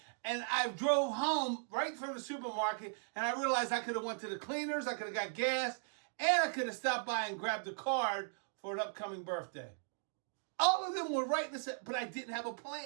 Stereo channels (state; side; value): silent; left; digital silence